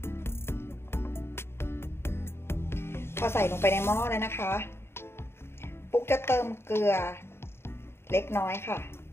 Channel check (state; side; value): late; right; 0.12 ms